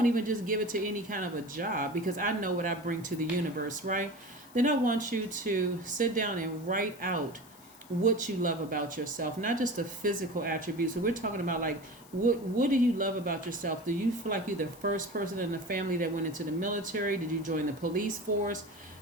even just give it to any kind of a job, because I know what I bring to the universe, right? Then I want you to sit down and write out what you love about yourself, not just the physical attributes. So we're talking about like, what do you love about yourself? Do you feel like you're the first person in the family that went into the military? Did you join the police force?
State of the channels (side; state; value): left; noise; hiss, 23 dB below the sound